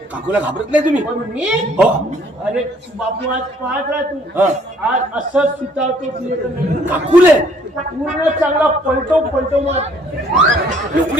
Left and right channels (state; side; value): normal; both; correlation 0.61